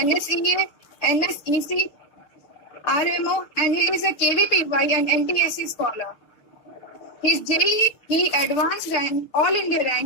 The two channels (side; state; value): right; late; 6.9 ms